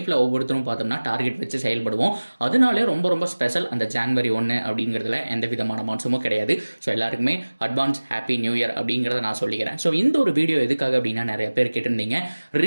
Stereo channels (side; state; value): both; inverted; correlation -1.00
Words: ஒவ்வொருத்தரும் பார்த்தோம்னா டார்கெட் வச்சு செயல்படுவோம். அதனாலே ரொம்ப ரொம்ப ஸ்பெஷல் அந்த ஜான்வரி 1 அப்படிங்கிறதுல எந்த விதமான மாற்றமும் கிடையாது. ஸோ எல்லாருக்குமே அட்வான்ஸ் ஹாப்பி நியூ இயர் அப்படிங்கிறத நான் சொல்லிக்கிறேன். ஸோ இந்த ஒரு வீடியோ எதுக்காக அப்படின்னா நிறைய பேர் கேட்டிருந்தீங்க.